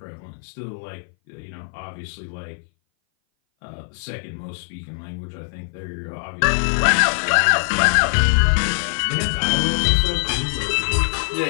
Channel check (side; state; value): right; silent; 59 dB below the other